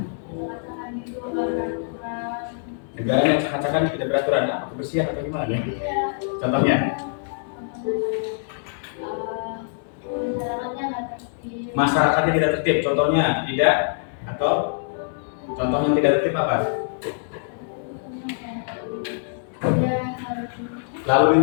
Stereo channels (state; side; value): silent; right; 62 dB below the other